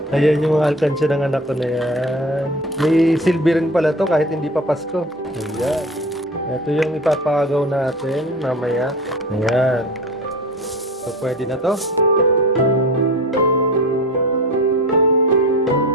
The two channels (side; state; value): both; normal; correlation 0.36